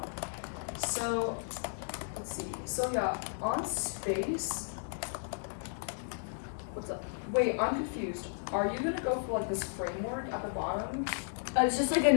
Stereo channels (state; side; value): silent; right; digital silence